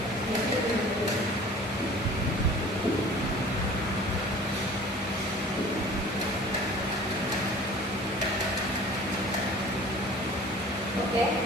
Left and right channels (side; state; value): both; normal; correlation 0.45